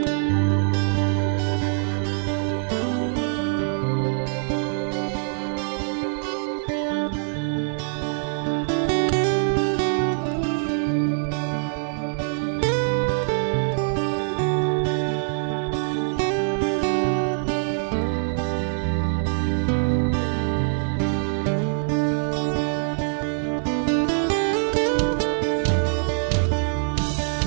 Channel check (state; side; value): silent; left; 58 dB below the other